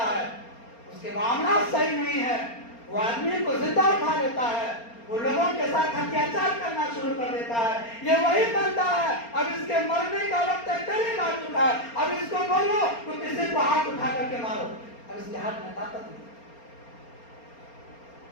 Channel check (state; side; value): late; right; 4.3 ms